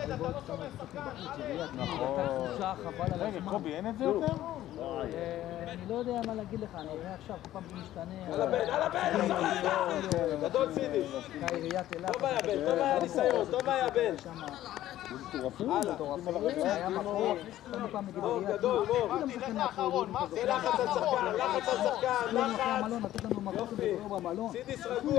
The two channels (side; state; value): right; quieter; 13.6 dB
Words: לא שומר שחקן, נכון. רגע, קובי, אין את זה יותר? אני לא יודע מה להגיד לך, אני אראה עכשיו, כל פעם זה משתנה. על הבן! גדול סידי! עיריית אילת. טוב היה בן, טוב היה ניסיון, טוב היה בן! היה מקום, כל פעם נגיד עיריית אילת. גדול, מור! זה לחץ על שחקן, לחץ! לתת לנו מקום כדור במלון. סידיס